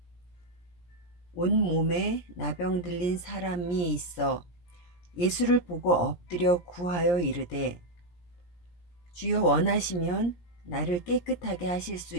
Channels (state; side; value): late; right; 17 ms